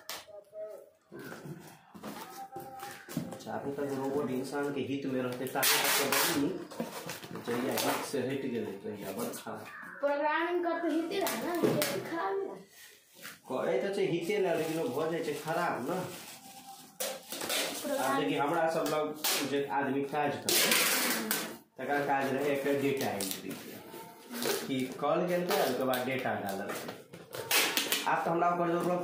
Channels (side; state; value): both; identical; correlation 1.00